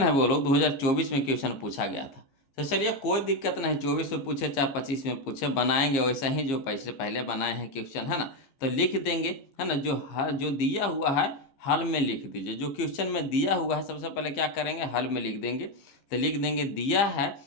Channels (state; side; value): late; right; 15 ms